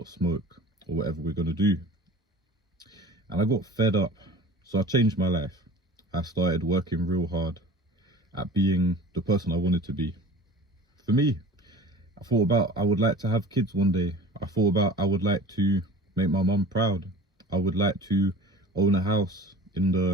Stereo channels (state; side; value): normal; both; correlation 0.40